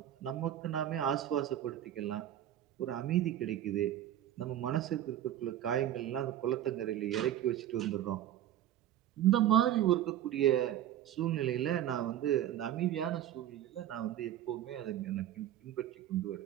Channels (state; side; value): quieter; left; 11.9 dB